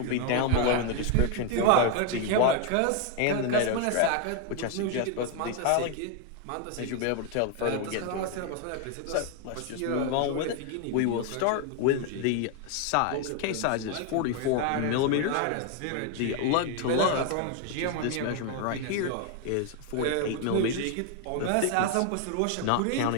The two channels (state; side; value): different; both; correlation 0.01